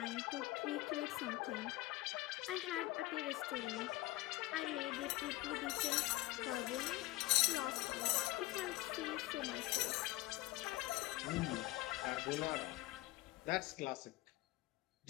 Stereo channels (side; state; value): right; quieter; 18.9 dB